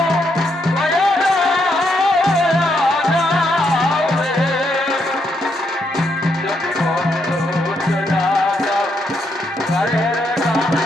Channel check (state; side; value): normal; both; correlation 0.77